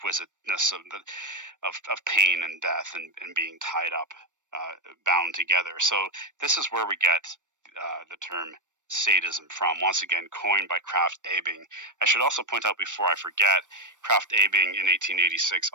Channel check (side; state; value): left; late; 0.86 ms